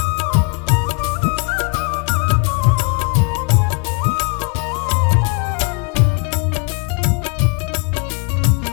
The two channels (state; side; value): quieter; right; 33.3 dB